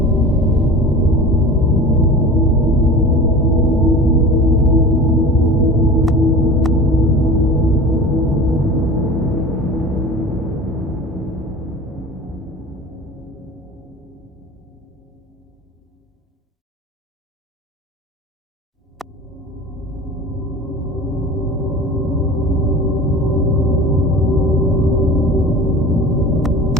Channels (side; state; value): both; normal; correlation 0.36